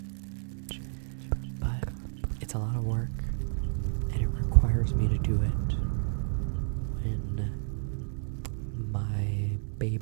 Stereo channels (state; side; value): silent; left; 57 dB below the other